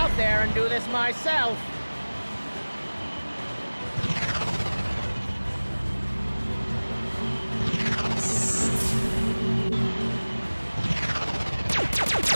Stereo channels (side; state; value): both; inverted; correlation -1.00